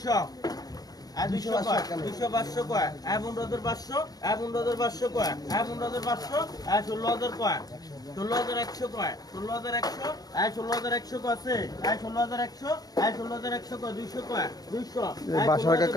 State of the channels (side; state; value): right; late; 0.18 ms